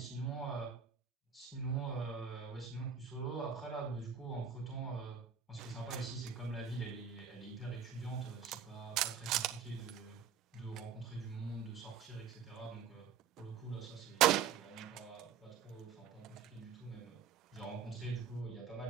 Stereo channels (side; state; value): left; quieter; 7.3 dB